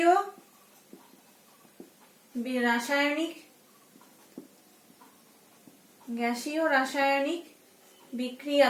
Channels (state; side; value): identical; both; correlation 1.00